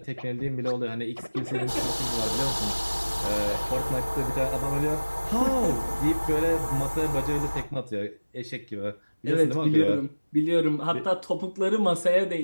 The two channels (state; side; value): inverted; both; correlation -1.00